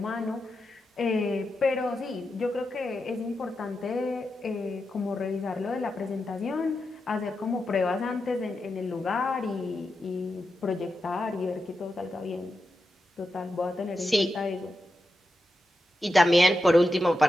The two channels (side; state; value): both; normal; correlation 0.89